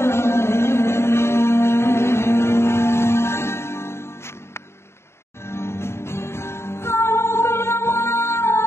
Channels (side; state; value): right; late; 0.12 ms